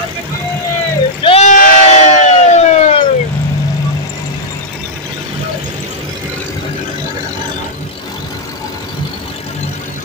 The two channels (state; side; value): normal; both; correlation -0.07